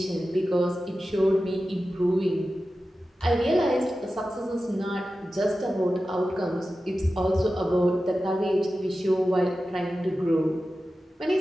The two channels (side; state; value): both; normal; correlation 0.93